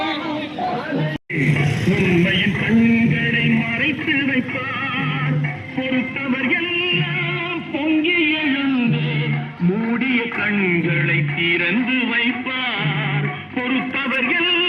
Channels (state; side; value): identical; both; correlation 1.00